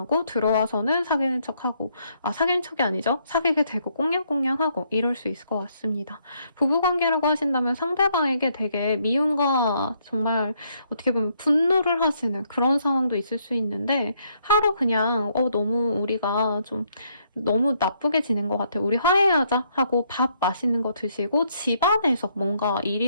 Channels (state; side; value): inverted; both; correlation -0.72